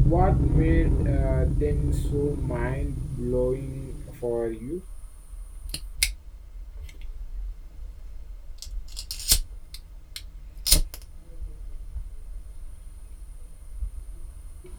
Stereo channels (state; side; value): identical; both; correlation 1.00